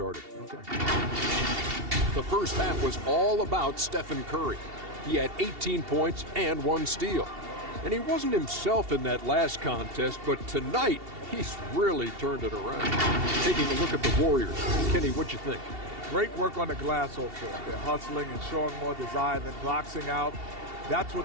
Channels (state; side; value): late; left; 2.7 ms